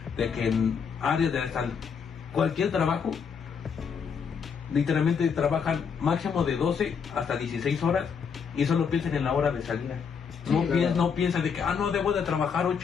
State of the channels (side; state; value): right; quieter; 6.4 dB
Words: de que en áreas de cualquier trabajo, literalmente trabajan máximo de 12 hasta 16 horas y solo piensan en la hora de salida. No piensan de que, no debo de trabajar